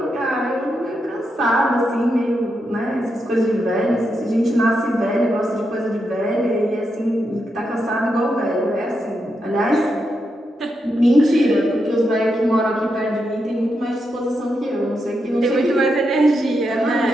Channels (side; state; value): both; normal; correlation 0.84